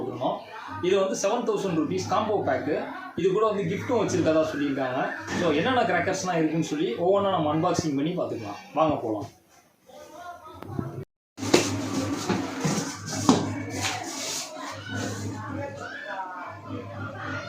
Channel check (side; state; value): both; identical; correlation 1.00